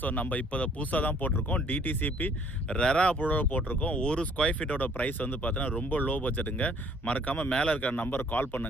ஸோ நம்ம இப்போ புதுசாக தான் போட்டிருக்கோம். டிடிசிபி ரெரா அப்ரூவோட போட்டிருக்கோம். ஒரு ஸ்கொயர் ஃபீட்டோட ப்ரைஸ் வந்து பார்த்தீங்கன்னா ரொம்ப லோ பட்ஜெட்டுங்க. மறக்காமல் மேலே இருக்கிற நம்பர் கால்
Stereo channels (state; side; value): normal; both; correlation 0.60